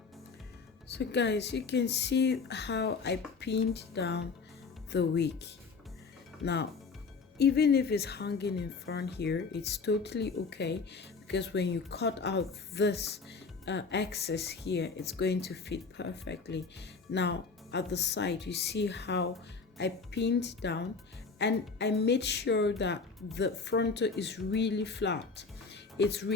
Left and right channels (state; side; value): quieter; right; 4.7 dB